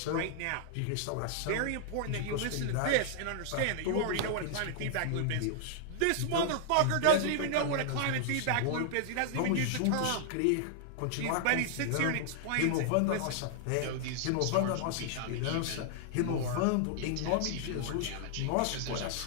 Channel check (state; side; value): different; both; correlation -0.01